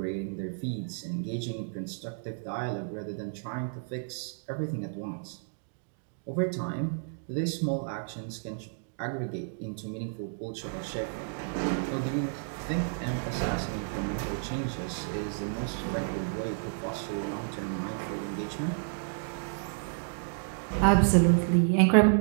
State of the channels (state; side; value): silent; left; digital silence